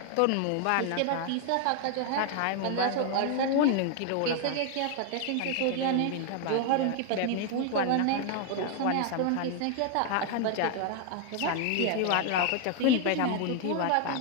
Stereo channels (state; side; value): different; both; correlation 0.00